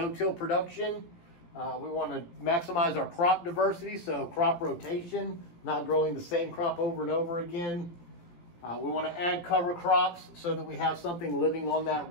production. We want to maximize our crop diversity, so crop rotation, not growing the same crop over and over again. We want to add cover crops so that we have something living on that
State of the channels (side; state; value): right; late; 17 ms